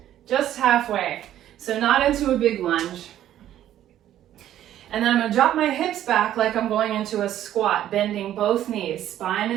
just halfway, so not into a big lunge. And then I'm gonna drop my hips back like I'm going into a squat, bending both knees, spine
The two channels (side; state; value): left; quieter; 12.0 dB